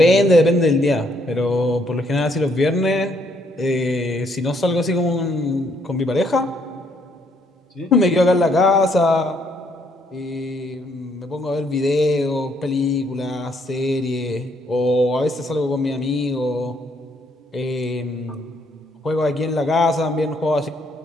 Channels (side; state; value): both; normal; correlation 0.70